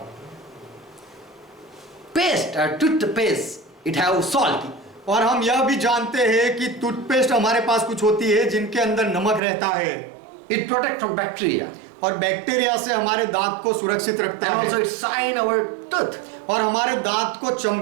paste, toothpaste, it have salt. और हम यह भी जानते हैं कि टूथपेस्ट हमारे पास कुछ होती है जिनके अंदर नमक रहता है। It protect from bacteria. और बैक्टीरिया से हमारे दांत को सुरक्षित रखता And also है it shine our tooth. और हमारे दांत को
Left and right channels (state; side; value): drops out; left; at 9.4 s